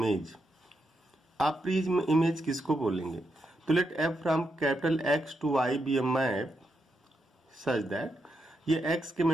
आप प्री इमेज किसको बोलेंगे? तो let F from capital X to Y be a map such that ये एक्स के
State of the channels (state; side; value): normal; both; correlation 0.83